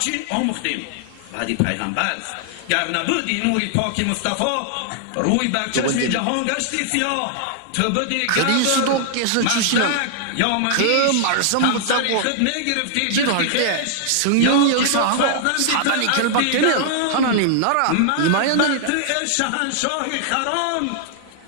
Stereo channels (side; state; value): both; different; correlation -0.01